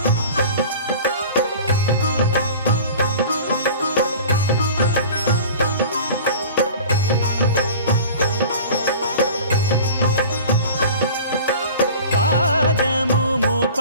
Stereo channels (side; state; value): both; inverted; correlation -0.40